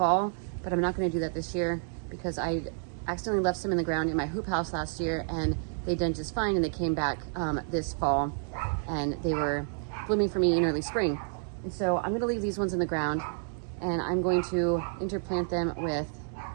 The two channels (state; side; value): silent; left; 58 dB below the other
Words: but I'm not going to do that this year because I accidentally left some in the ground in my hoop house last year, and they done just fine, and they came back this fall, and they were blooming for me in early spring. And so I'm going to leave these ones in the ground, and I'm going to interplant them